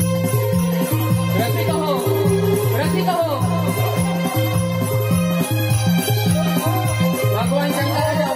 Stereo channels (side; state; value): both; identical; correlation 1.00